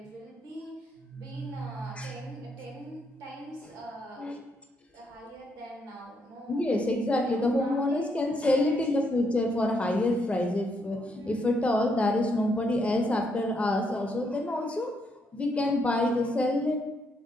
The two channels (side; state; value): both; normal; correlation 0.76